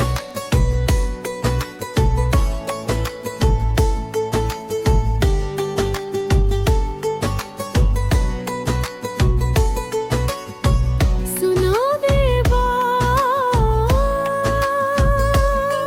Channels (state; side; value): identical; both; correlation 1.00